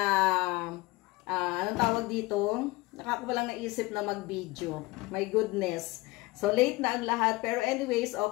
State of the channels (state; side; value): quieter; right; 21.7 dB